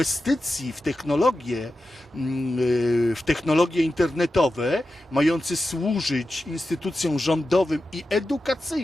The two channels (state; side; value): normal; both; correlation 0.91